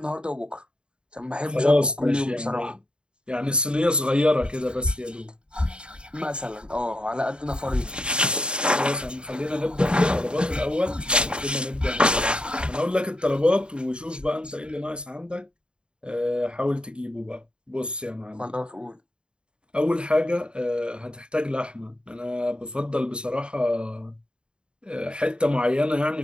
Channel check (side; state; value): left; late; 0.052 ms